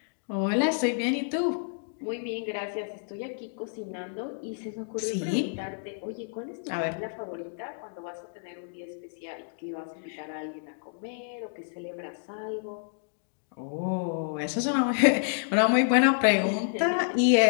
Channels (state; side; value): silent; right; digital silence